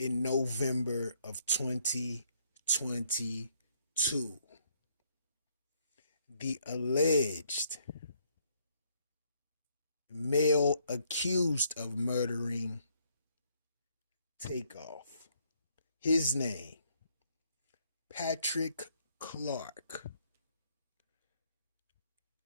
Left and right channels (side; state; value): both; inverted; correlation -0.69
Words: November of 2022. The alleged male accused of murdering Takeoff, his name, Patrick Clark.